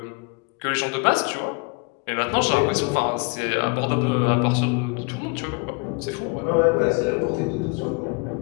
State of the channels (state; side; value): quieter; right; 31.6 dB